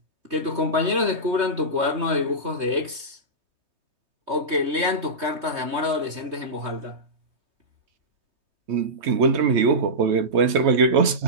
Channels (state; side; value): late; left; 3.2 ms